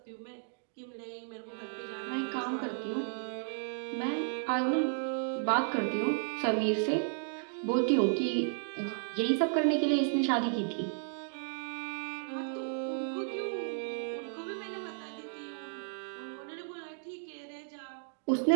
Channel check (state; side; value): silent; left; digital silence